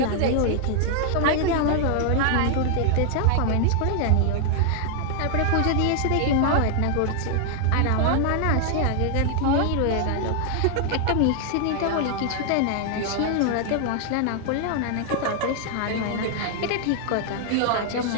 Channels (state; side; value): different; both; correlation 0.00